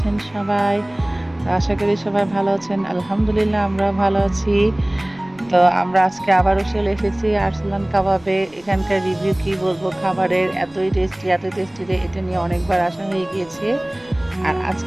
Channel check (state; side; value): noise; left; rumble, 27 dB below the sound